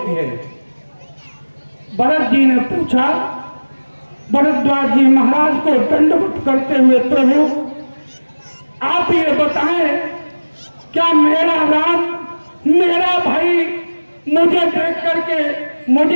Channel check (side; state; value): both; inverted; correlation -1.00